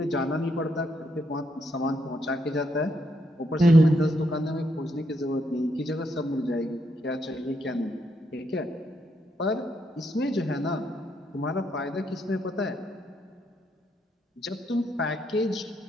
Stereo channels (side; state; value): both; normal; correlation 0.77